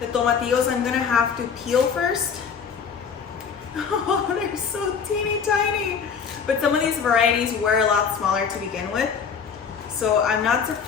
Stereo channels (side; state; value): right; quieter; 6.5 dB